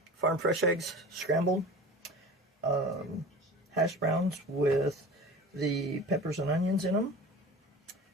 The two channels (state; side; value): normal; both; correlation 0.37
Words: Farm fresh eggs, scrambled. Hash browns with the peppers and onions in them.